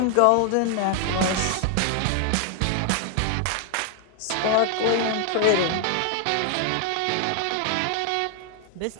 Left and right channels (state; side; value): different; both; correlation 0.00